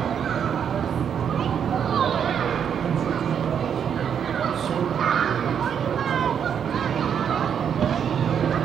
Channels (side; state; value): left; quieter; 8.0 dB